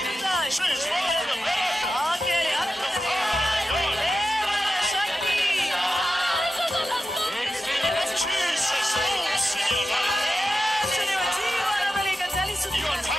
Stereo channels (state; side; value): normal; both; correlation 0.92